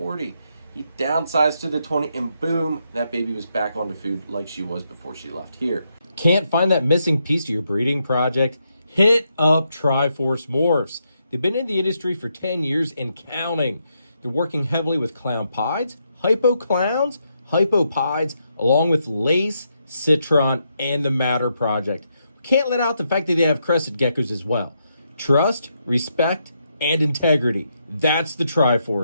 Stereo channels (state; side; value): inverted; both; correlation -0.80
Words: He downsized to the 20, and boom, that baby was back onto food like she was before she left here. Can't find that missing piece to your breeding project? Hit up Triforce Morphs. They've been in the industry for 10 years and counting. They're working heavily with clown pieds, hypo clowns, hypopods, along with lace, citron, and the Matter project. Can't let out the fact that they have crested geckos as well. Trust, respect, and integrity. That's the